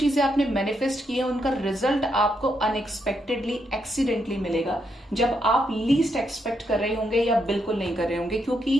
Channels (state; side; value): normal; both; correlation 0.79